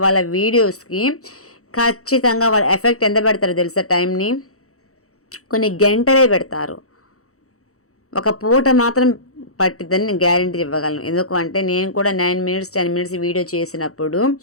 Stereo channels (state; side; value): late; right; 0.65 ms